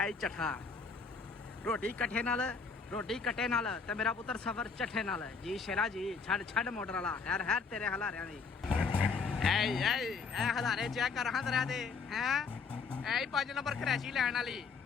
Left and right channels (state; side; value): quieter; right; 5.1 dB